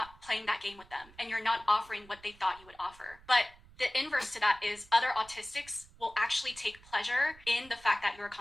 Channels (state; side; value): noise; right; rumble, 24 dB below the sound